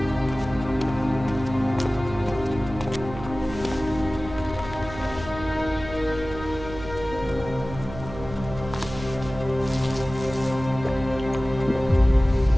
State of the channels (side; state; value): right; noise; hum, 12 dB below the sound